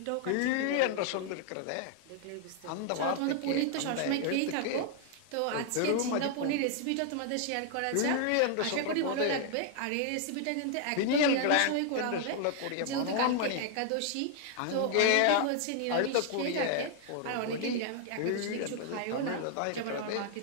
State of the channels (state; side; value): different; both; correlation 0.00